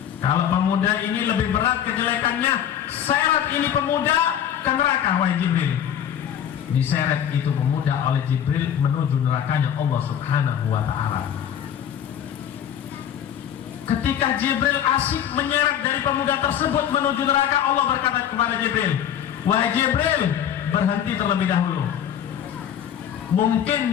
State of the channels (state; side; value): quieter; right; 9.5 dB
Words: kalau pemuda ini lebih berat kejelekannya, seret ini pemuda ke neraka, wahai Jibril. Diseret itu pemuda oleh Jibril menuju nerakanya Allah Subhanahu wa ta'ala. Ketika Jibril asik menyeret dari pemuda tersebut menuju neraka, Allah berkata kepada Jibril, wahai Jibril, berhenti terlebih dahulu. Mungkin